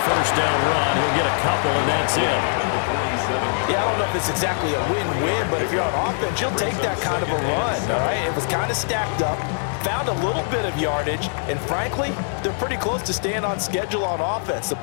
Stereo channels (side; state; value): right; silent; digital silence